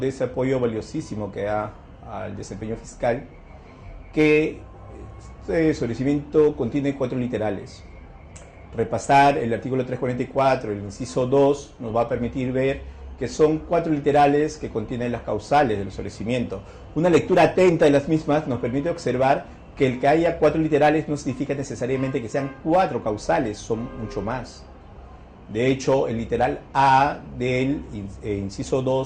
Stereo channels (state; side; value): identical; both; correlation 1.00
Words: ese apoyo valiosísimo que da al desempeño fiscal, que este sobreseimiento contiene 4 literales. Repasar el artículo 344, el inciso 2, nos va a permitir ver que son 4 literales que contienen las causales del sobreseimiento. Una lectura atenta de las mismas nos permite observar que el que haya 4 literales no significa necesariamente que sean 4 causales, son mucho más. De hecho, el literal A del inciso